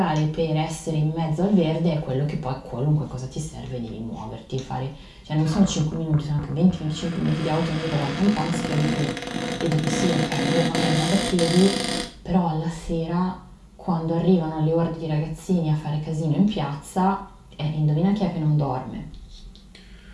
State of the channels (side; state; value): both; identical; correlation 1.00